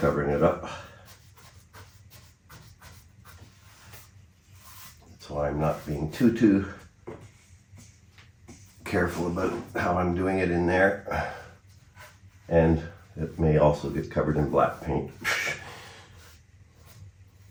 it up. So I'm not being too careful about how I'm doing it in there. And it may also get covered in black paint.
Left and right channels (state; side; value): identical; both; correlation 1.00